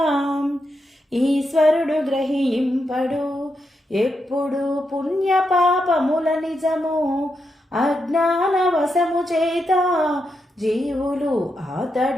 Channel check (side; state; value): both; normal; correlation 0.84